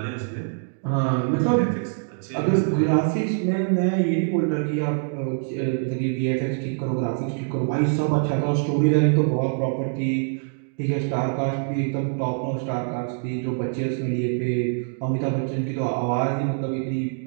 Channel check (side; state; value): left; silent; digital silence